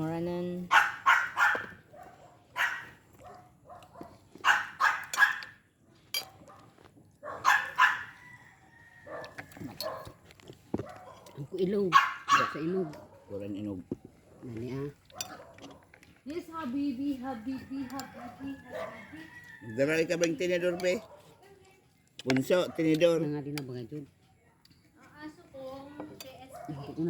Ang ilog. Sa ilog. Kuran inog. Nani Yes, Habibi. Magdaray ka bang tinidor, pe? Punso, tinidor. Nga din na bagay dyan. Ang aso kong KSP. Ito ko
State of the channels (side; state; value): both; identical; correlation 1.00